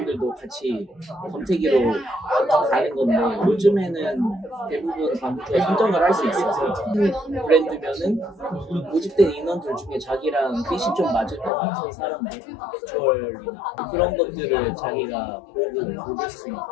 같이 검색기로 가는 건데 요즘에는 대부분 광고주가 선정을 할 수 있어서 브랜드면은 모집된 인원들 중에 자기랑 핏이 좀 맞을 것 같은 사람들 비주얼이나 그런 것들을 자기가 보고 고를 수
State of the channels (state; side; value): drops out; right; at 11.5 s